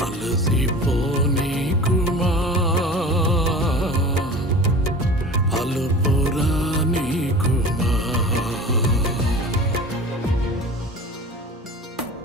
అలసిపోని కుమా అలుపురాని కుమా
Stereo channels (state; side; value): normal; both; correlation 0.38